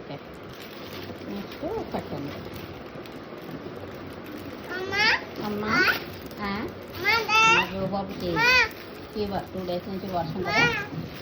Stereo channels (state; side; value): identical; both; correlation 1.00